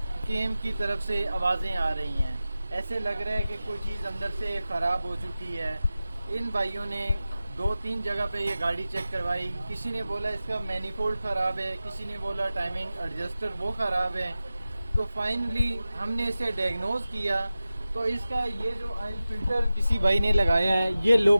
کیم کی طرف سے آوازیں آ رہی ہیں. ایسے لگ رہا ہے کہ کوئی چیز اندر سے خراب ہو چکی ہے. ان بھائیوں نے 2-3 جگہ پہ یہ گاڑی چیک کروائی. کسی نے بولا اس کا مینیفولڈ خراب ہے, کسی نے بولا ٹائمنگ ایڈجسٹر وہ خراب ہے. تو فائنلی ہم نے اسے ڈائگنوز کیا. تو اس کا یہ جو آئل فلٹر کسی بھائی نے لگایا ہے یہ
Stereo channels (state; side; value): inverted; both; correlation -0.95